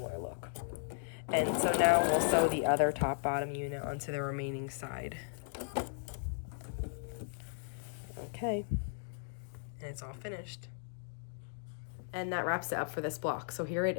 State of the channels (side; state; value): right; silent; digital silence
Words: look. And so now we'll sew the other top bottom unit onto the remaining side. Okay. And it's all finished. And that wraps it up for this block. So here it